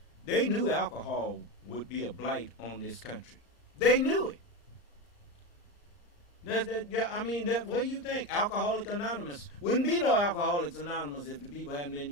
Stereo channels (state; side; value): late; right; 34 ms